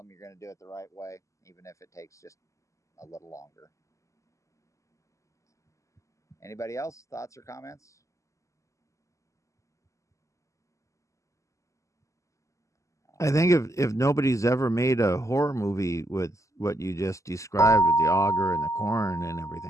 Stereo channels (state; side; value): late; right; 0.15 ms